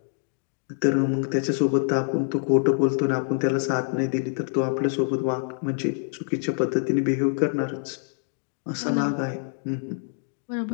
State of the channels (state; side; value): silent; right; digital silence